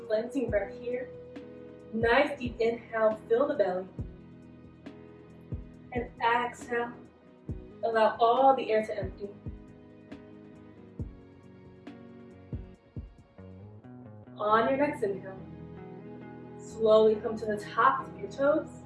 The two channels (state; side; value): identical; both; correlation 1.00